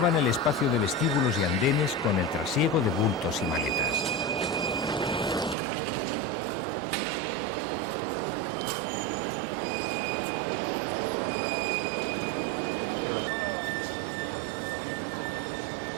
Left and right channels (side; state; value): left; drops out; at 5.6 s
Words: el espacio de vestíbulos y andenes con el trasiego de bultos y maletas.